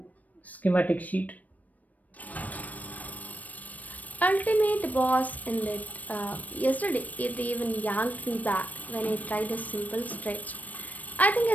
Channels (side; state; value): right; late; 0.075 ms